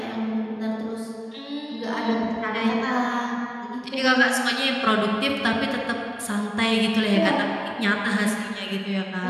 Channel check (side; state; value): both; identical; correlation 1.00